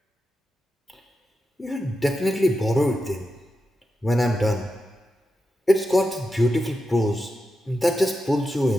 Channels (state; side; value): normal; both; correlation 0.89